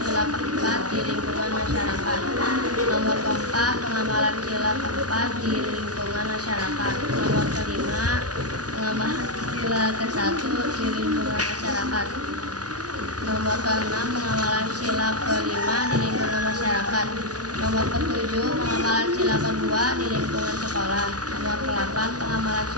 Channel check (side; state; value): left; late; 0.68 ms